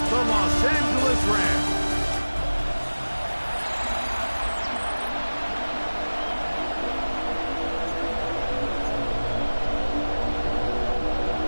the Los Angeles Rams.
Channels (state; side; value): inverted; both; correlation -1.00